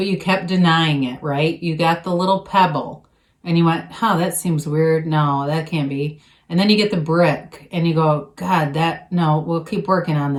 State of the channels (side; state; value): both; identical; correlation 1.00